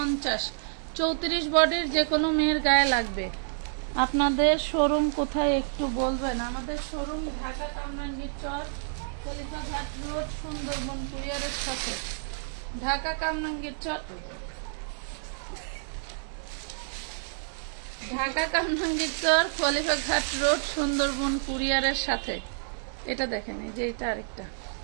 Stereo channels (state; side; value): silent; left; digital silence